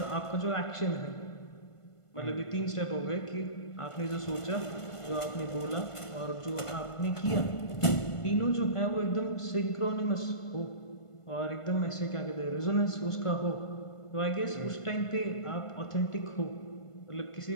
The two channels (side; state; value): right; late; 1.5 ms